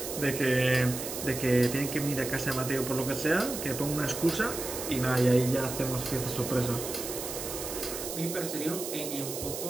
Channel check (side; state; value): right; noise; hiss, 7 dB below the sound